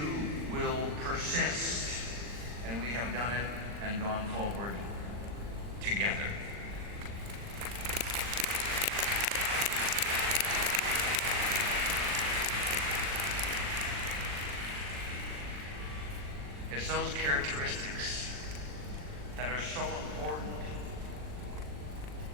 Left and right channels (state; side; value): late; left; 40 ms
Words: will persist. And we have done it and gone forward together. It's those characteristics that are so important